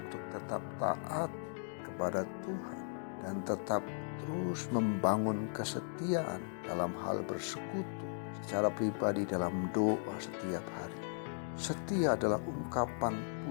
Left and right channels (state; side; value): silent; right; digital silence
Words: tetap taat kepada Tuhan dan tetap terus membangun kesetiaan dalam hal bersekutu secara pribadi dalam doa setiap hari. Setia adalah ungkapan